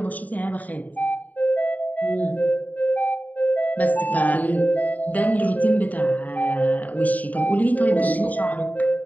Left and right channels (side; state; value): right; late; 0.076 ms